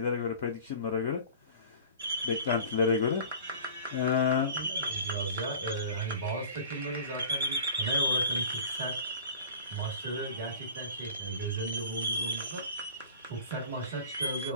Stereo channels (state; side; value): inverted; both; correlation -0.42